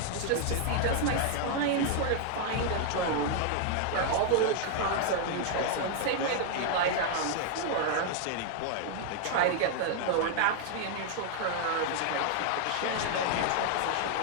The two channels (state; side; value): different; both; correlation 0.00